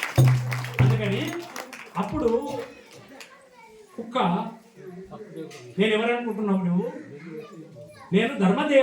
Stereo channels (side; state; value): both; identical; correlation 1.00